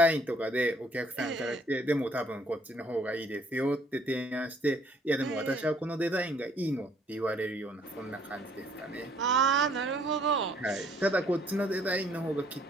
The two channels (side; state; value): both; normal; correlation 0.62